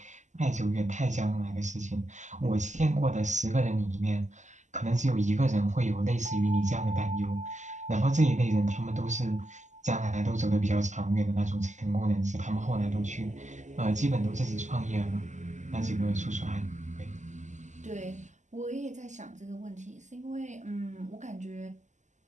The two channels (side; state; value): left; late; 0.34 ms